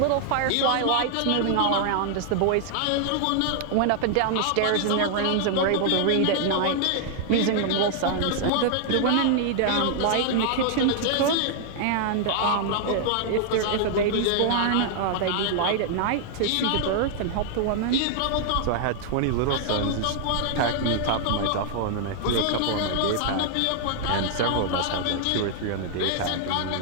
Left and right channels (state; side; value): different; both; correlation 0.00